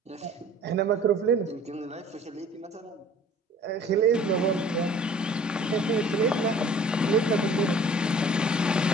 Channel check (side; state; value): both; normal; correlation 0.50